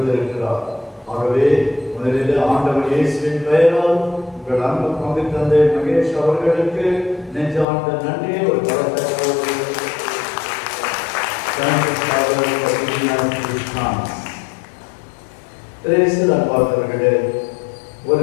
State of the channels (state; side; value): drops out; right; at 7.7 s